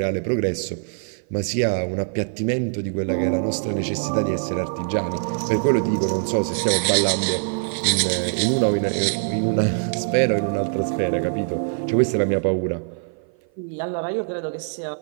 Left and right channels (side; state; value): left; silent; 55 dB below the other